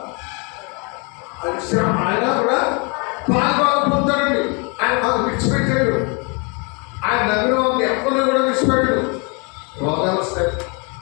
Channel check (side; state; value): right; quieter; 32.7 dB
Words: పాల్గొన పొందుతాడండి. ఆయన మాకు విడిచిపెట్టాడు. ఆయన నమ్మిన వాళ్ళని ఎక్కడో కూడా విడిచిపెట్టాడు. రోగాలు వస్తాయి,